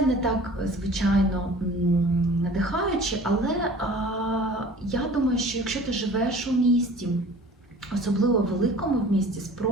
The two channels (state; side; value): normal; both; correlation 0.45